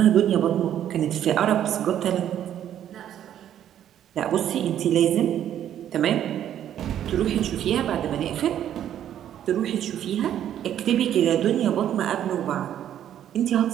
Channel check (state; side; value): quieter; left; 10.6 dB